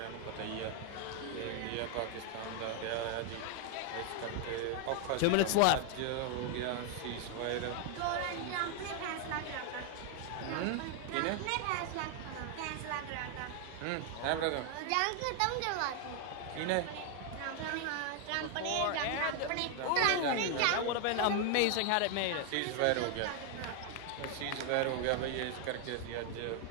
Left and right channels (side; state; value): both; different; correlation 0.00